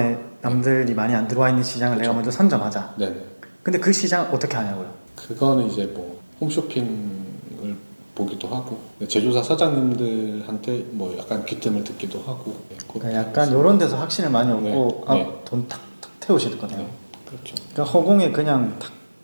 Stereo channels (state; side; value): inverted; both; correlation -1.00